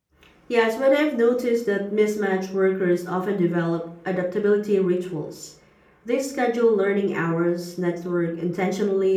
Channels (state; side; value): identical; both; correlation 1.00